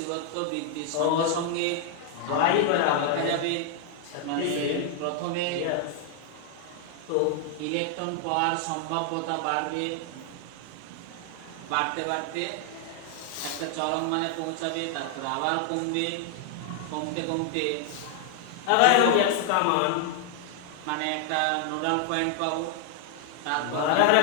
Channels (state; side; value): different; both; correlation 0.00